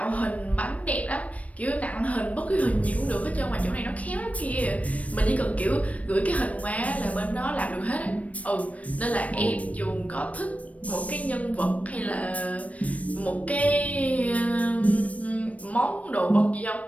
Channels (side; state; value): right; late; 0.067 ms